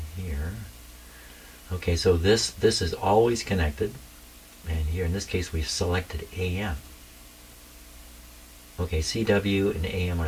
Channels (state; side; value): identical; both; correlation 1.00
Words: here. Okay, so this is always connected. And here in this case we've selected AM. Okay, CW and AM